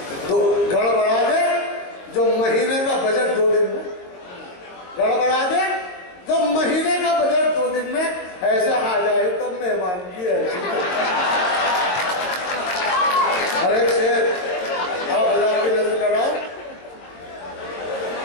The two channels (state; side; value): late; right; 22 ms